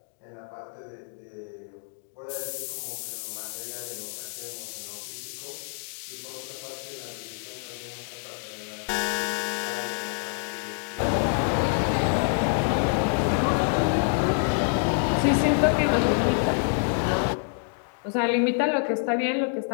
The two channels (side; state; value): right; silent; 58 dB below the other